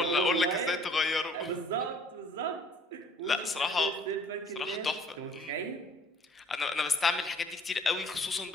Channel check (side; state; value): both; normal; correlation 0.56